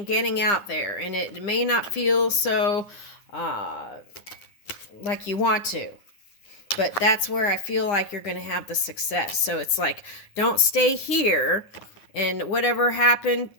getting out there. And it may not feel so like you want to. But that's where I feel like you're going to have the success. So it's like, don't stay here and whatever happened,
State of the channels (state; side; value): late; right; 9.9 ms